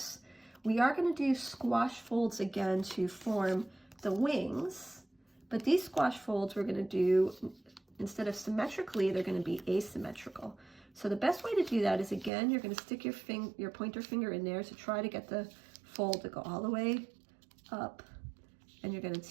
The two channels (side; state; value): left; drops out; at 12.3 s